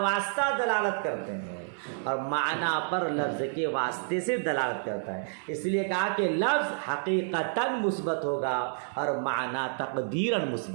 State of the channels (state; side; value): silent; left; digital silence